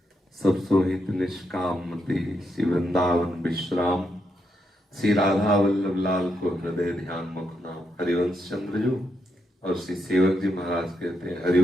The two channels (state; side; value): normal; both; correlation 0.81